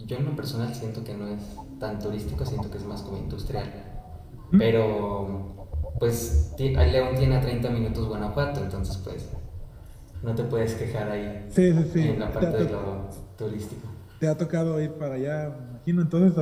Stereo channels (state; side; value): identical; both; correlation 1.00